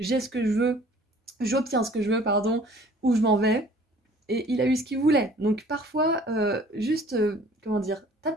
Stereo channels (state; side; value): normal; both; correlation 0.52